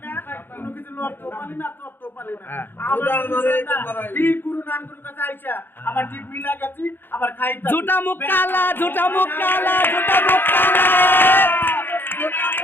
না, কোনো কিছু লড়তেও পারলি না, চড়তেও পারলি না। ঠিক গুরু নান গুরুর কাছে আইসা আবার ঠিক মিলা গেছি, আবার খাইতে ঝুটা মুখ কালা, ঝুটা মুখ কালা, ঝুটা মুখ কালা।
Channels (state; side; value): late; right; 0.10 ms